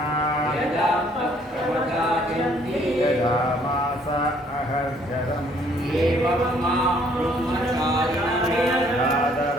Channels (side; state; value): both; normal; correlation 0.62